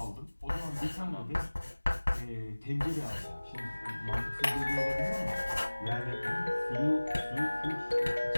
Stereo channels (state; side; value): inverted; both; correlation -1.00